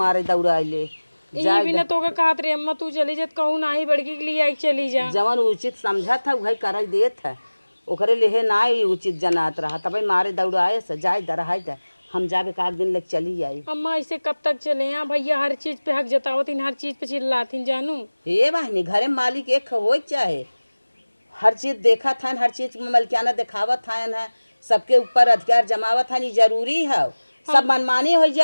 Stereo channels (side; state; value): both; inverted; correlation -1.00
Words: दौड़ाइले यही भी ना तो का कहत रे अम्मा तू चली जत कहूं ना ही बड़की के लिए आई चली जा। जवन उचित समझा था वही कर देत है, ओकरे लेहे ना ही उचित जनात रहा तब मारे दौड़ाए से जाए दरहाई दे हम जाबे का दिन लग चली आई। अम्मा ऐसे कब तक चले यहाँ भैया हर चीज पे हक जतावतीन हर चीज पे चिल्लातीन जानू। हे बहनी घरे मालिक एक हो चाहे हर चीज देखा था हर चीज में मलकियाना दिखावत था है सबके ऊपर अधिकार जमावत था, नहीं जरूरी है सब मनमानी हो